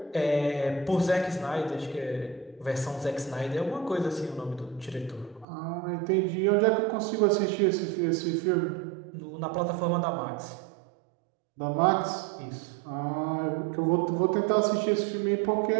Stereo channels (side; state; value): left; drops out; at 5.5 s